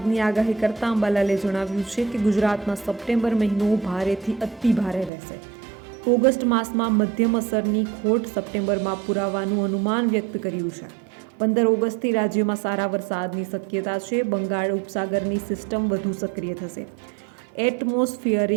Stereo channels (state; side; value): drops out; left; at 5.1 s